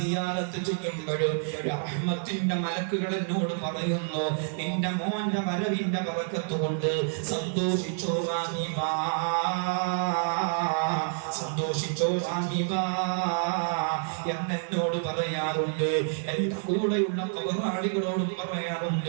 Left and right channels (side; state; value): left; silent; 58 dB below the other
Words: ചെയ്യുമ്പോഴും റഹ്മത്തിന്റെ മലക്കുകൾ എന്നോട് പറയുന്നു, നിന്റെ മോന്റെ വരവിന്റെ ബറക്കത്ത് കൊണ്ട് സന്തോഷിച്ചോ റഹീബ, സന്തോഷിച്ചോ റഹീബ എന്നോട് പറയാറുണ്ട്. എന്റെ കൂടെയുള്ള കബറാളികളോടും